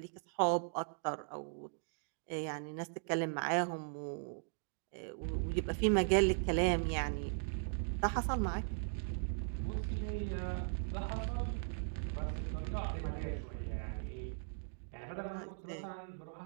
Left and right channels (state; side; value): silent; left; digital silence